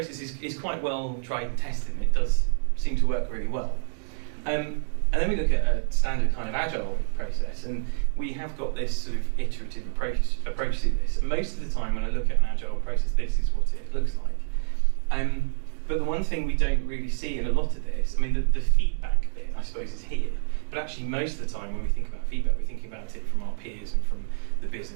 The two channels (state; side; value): silent; left; digital silence